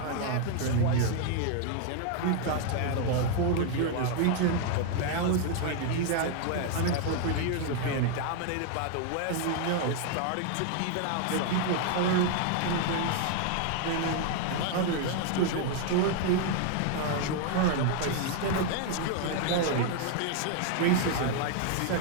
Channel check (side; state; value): both; different; correlation 0.00